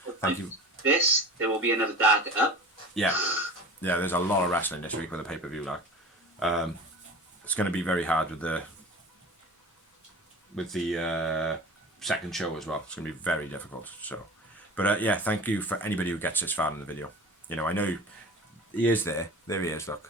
Thank you. There will be another Dark up. Yeah, there's a lot of wrestling this week with the pay-per-view. Like, it's going to be very hard with the second show as well. It's going to be very difficult. So, but yeah, thank you for anybody who gets this far in the video. You know, I know he is there. There he is.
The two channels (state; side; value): normal; both; correlation 0.37